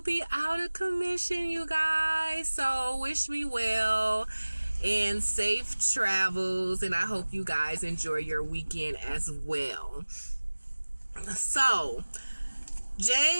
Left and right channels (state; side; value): inverted; both; correlation -1.00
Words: out of commission, you guys. So wish me well and safe travels, and I hope you guys enjoy your weekend as well. So